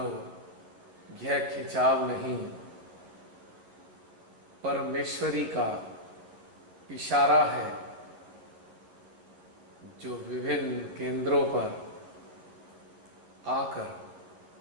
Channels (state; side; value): late; left; 11 ms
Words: यह खिंचाव नहीं, परमेश्वरी का इशारा है जो विभिन्न केंद्रों पर आकर